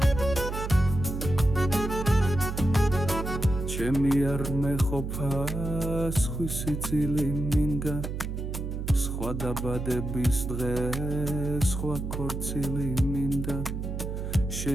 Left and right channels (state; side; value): noise; right; hum, 4 dB below the sound